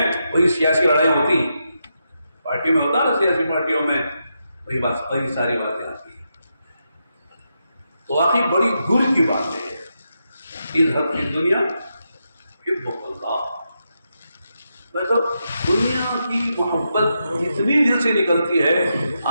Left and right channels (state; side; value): inverted; both; correlation -0.85